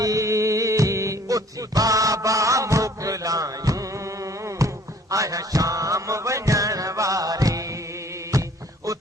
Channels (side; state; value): both; normal; correlation 0.56